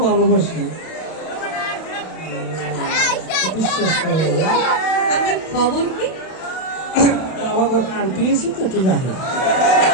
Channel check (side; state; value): right; late; 31 ms